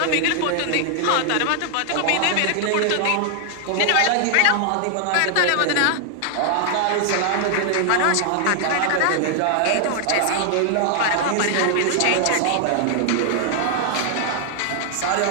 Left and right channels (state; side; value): different; both; correlation 0.00